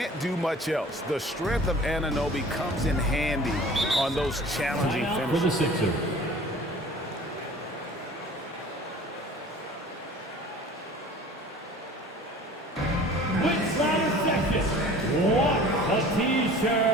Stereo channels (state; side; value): normal; both; correlation 0.45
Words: do much else. The strength of Anunoby comes in handy on those challenging Timeout for the finishes. Sixers. With ladder section, what a